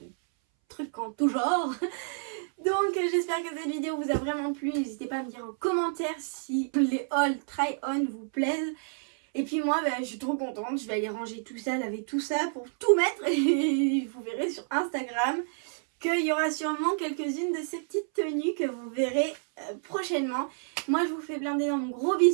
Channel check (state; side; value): silent; left; 58 dB below the other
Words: trucs en tout genre. Donc j'espère que cette vidéo vous a vraiment plu. N'hésitez pas à me dire en commentaire si les haul try-on vous plaisent. Et puis moi je suis trop contente, je vais aller ranger tout ça, laver tout ça pour tout mettre. Et vous verrez sur Instagram qu'il y aura sûrement quelques-unes de ces petites tenues que vous verrez prochainement. Moi je vous fais plein d'énormes gros